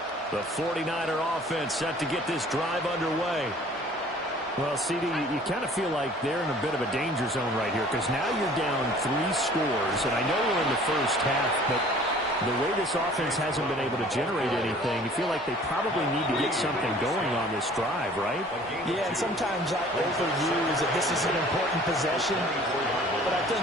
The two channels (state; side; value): normal; both; correlation 0.51